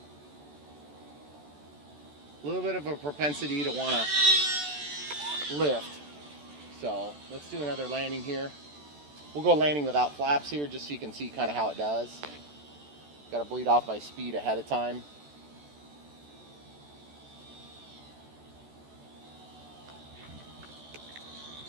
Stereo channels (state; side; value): late; left; 14 ms